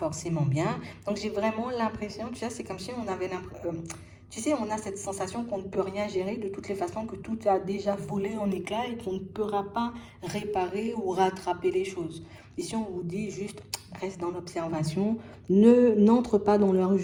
bien. Donc, j'ai vraiment l'impression, tu sais, c'est comme si on avait l'impression... tu sais, on a cette sensation qu'on ne peut rien gérer de toutes les façons, que tout a déjà volé en éclats et qu'on ne pourra pas réparer ou rattraper les choses. Ici, on vous dit juste, reste dans l'observation, n'entre pas dans leur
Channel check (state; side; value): identical; both; correlation 1.00